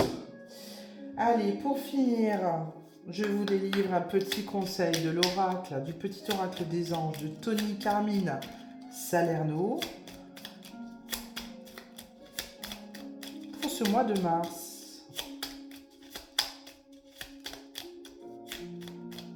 Allez, pour finir, je vous délivre un petit conseil de l'oracle, du petit oracle des anges de Tony Carmine Salerno. Pour ce mois de mars.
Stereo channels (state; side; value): identical; both; correlation 1.00